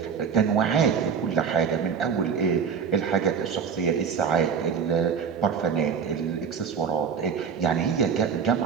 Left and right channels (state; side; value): quieter; left; 6.6 dB